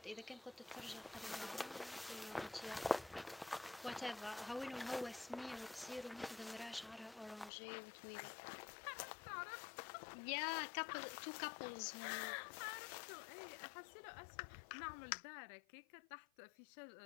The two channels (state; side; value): drops out; right; at 7.5 s